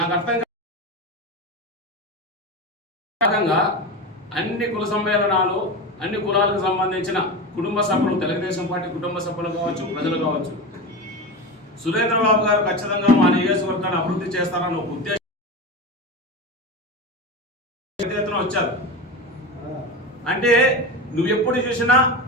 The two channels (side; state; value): both; normal; correlation 0.23